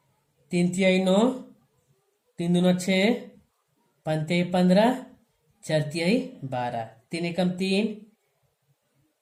3 9, 3 दूना 6, 5 15, 4 12, 3 एकम 3,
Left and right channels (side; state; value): both; identical; correlation 1.00